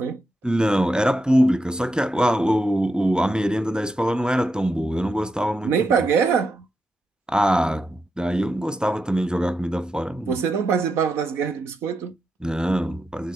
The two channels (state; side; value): normal; both; correlation 0.85